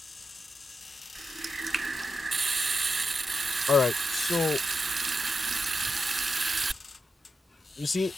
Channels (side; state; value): both; normal; correlation 0.87